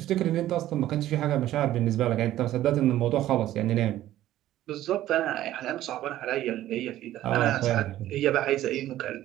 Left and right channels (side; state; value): left; quieter; 13.8 dB